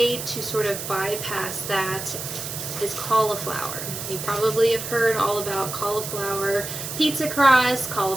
to sort of bypass that is cauliflower. You probably have heard all about cauliflower pizza crust,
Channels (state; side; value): noise; right; hiss, 7 dB below the sound